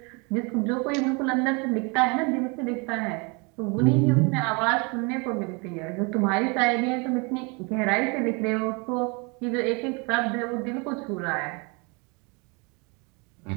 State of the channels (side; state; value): left; quieter; 30.8 dB